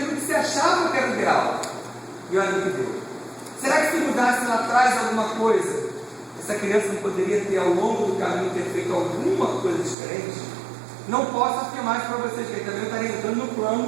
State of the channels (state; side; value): drops out; left; at 10.0 s